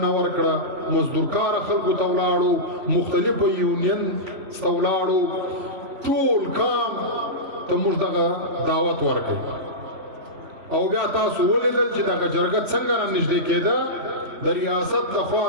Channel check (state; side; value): late; left; 3.0 ms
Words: ورکړه، مزدورکاره خلکو ته ولاړو، مختلفو یونین ته ولاړو، ټول کام ته موږ دغه دعوت ورکړ. او بیا تاسو ولیدل چې دغه جرګه څنګه را نږدې کېده، د ریاست لخوا